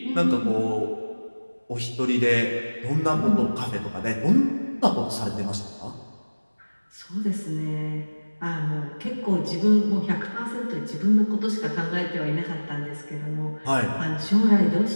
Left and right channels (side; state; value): both; inverted; correlation -1.00